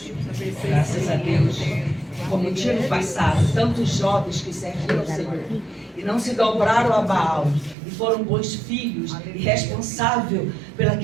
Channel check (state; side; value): drops out; left; at 7.8 s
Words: abençoe. Graças a Deus. Como tinha no passado, tantos jovens que serviram ao Senhor e não se dobraram a Baal e foram bons filhos e responsáveis